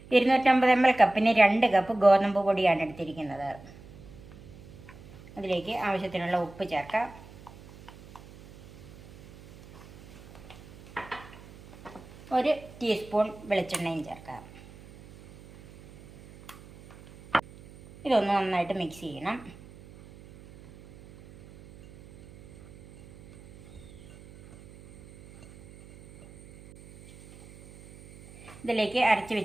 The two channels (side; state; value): right; noise; hum, 20 dB below the sound